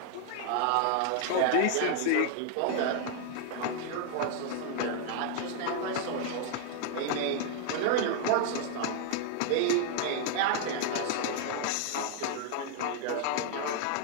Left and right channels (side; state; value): both; different; correlation 0.00